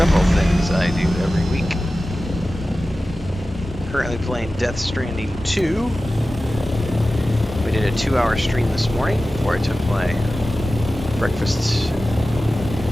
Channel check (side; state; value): both; normal; correlation 0.95